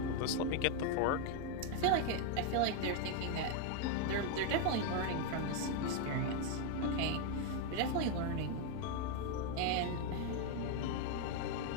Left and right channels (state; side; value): different; both; correlation 0.01